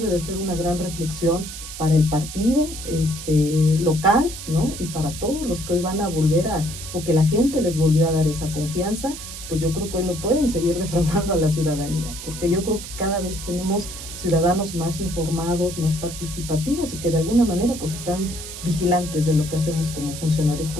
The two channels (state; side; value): noise; right; hiss, 10 dB below the sound